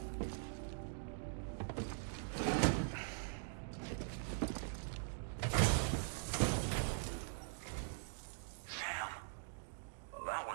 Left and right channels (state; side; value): silent; left; digital silence